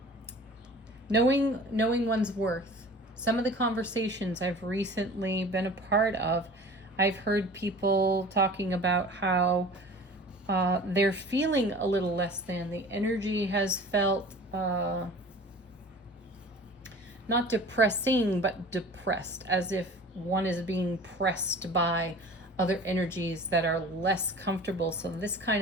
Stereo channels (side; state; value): both; normal; correlation 0.42